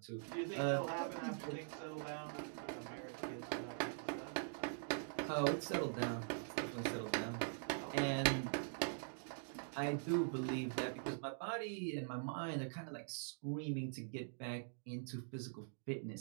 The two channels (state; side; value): silent; left; digital silence